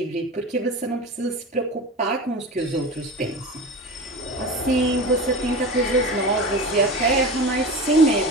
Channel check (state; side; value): normal; both; correlation 0.30